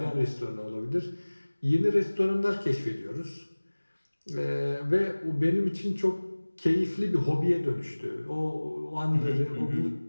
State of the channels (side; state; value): both; inverted; correlation -1.00